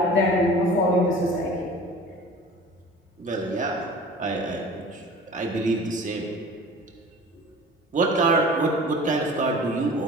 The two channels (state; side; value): normal; both; correlation 0.42